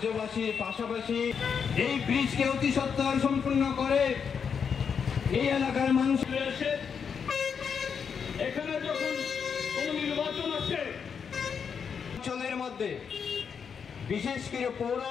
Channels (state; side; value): quieter; right; 6.7 dB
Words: পাশাপাশি এই ব্রিজকে অতি সত্বর সম্পূর্ণ করে এই এলাকার মানুষ এসে এখানে যখন কোনো নির্বাচন আসে অঞ্চলের মধ্যে বিশেষ করে পৌর